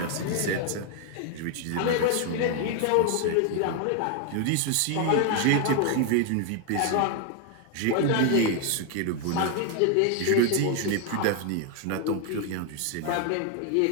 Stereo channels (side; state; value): both; different; correlation 0.01